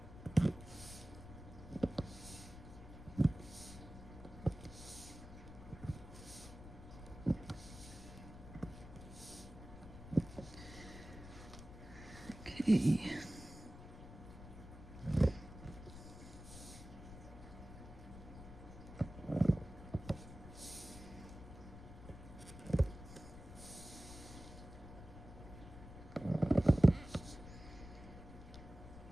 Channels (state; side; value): noise; left; rumble, 14 dB below the sound